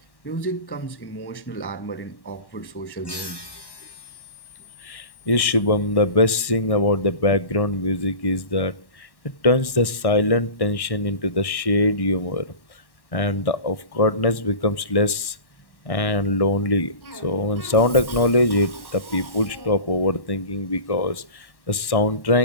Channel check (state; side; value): late; right; 1.1 ms